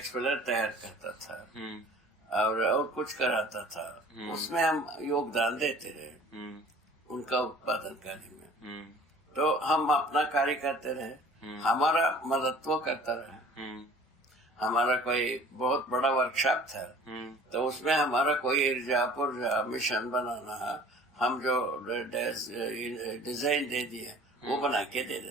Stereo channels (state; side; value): normal; both; correlation 0.48